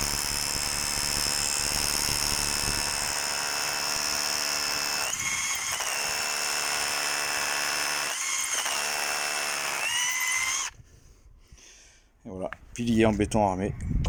Et voilà, pilier en béton armé,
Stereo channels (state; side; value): identical; both; correlation 1.00